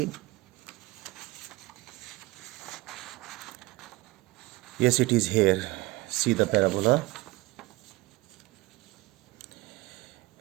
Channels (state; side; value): quieter; left; 20.3 dB